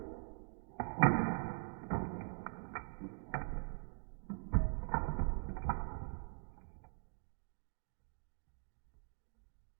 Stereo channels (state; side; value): silent; left; digital silence